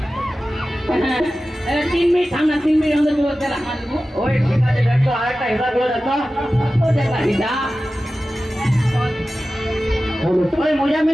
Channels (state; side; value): normal; both; correlation 0.95